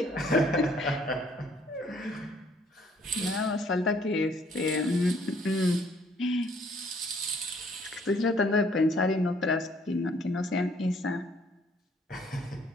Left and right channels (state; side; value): normal; both; correlation 0.62